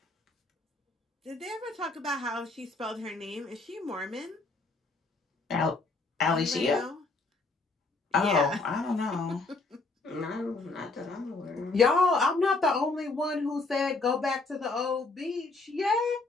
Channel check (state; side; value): quieter; right; 3.5 dB